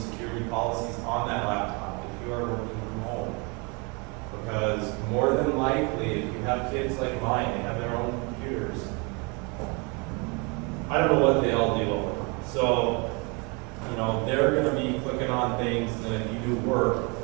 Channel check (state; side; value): quieter; left; 30.9 dB